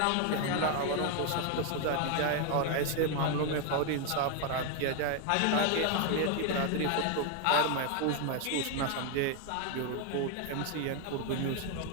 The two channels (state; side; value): different; both; correlation 0.01